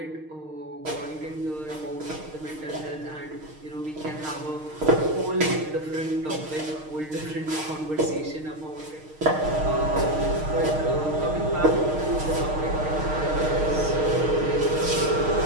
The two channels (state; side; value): late; left; 6.5 ms